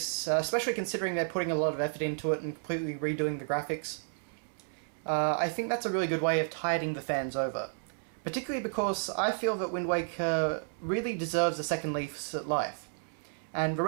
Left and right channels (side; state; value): left; silent; digital silence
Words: especially considering they're putting a lot of effort into it and completely redoing the graphics, I think that's a really good way of tiding the fans over. Particularly because I feel that Wind Waker really deserves a second lease at life. And the